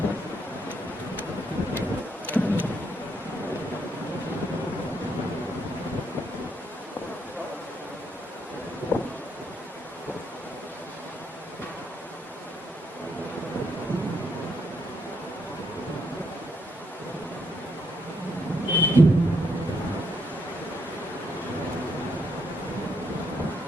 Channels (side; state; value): both; normal; correlation 0.75